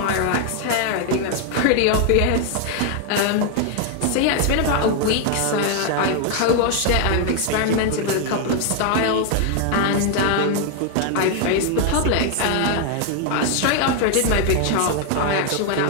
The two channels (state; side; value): different; both; correlation 0.01